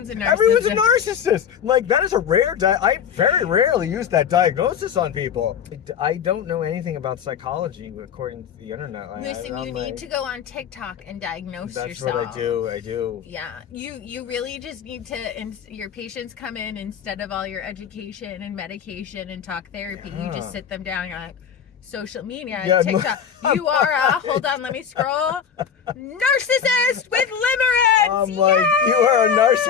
a narcissist. Everyone's a narcissist. Like, that is a rare. I very rarely use that diagnosis on people. I don't know anything about psychology according to the internet. Listen, you need to go on TikTok and diagnose That's yourself. what I do. I do. Yeah, you really just need to. Your patients come in instead of all your education and medication and talk therapy. You Yeah. just sit them down. You're like, social media, Yeah, TikTok. You are a hold on, let me scroll. Narcissist with limerence. I'm like, you are a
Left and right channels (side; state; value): right; quieter; 7.7 dB